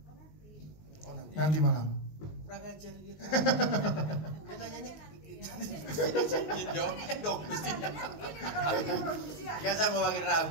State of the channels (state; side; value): late; right; 19 ms